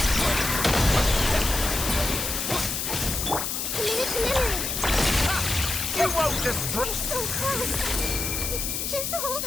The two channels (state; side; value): noise; left; hiss, 2 dB below the sound